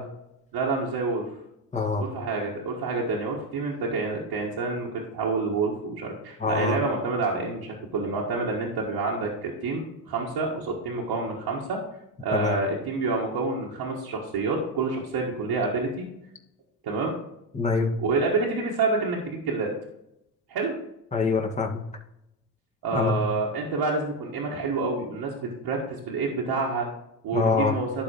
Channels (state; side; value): normal; both; correlation 0.07